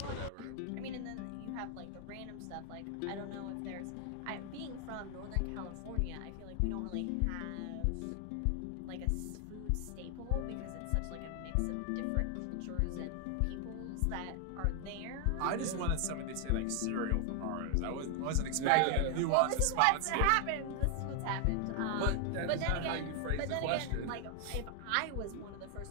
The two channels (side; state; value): both; different; correlation 0.00